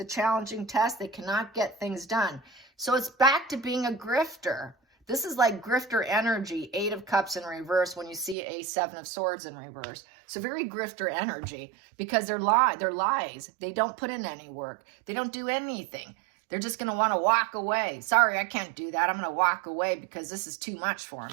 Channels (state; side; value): drops out; left; at 8.3 s